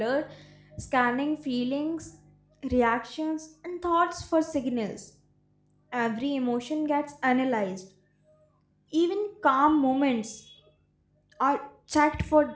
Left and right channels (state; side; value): identical; both; correlation 1.00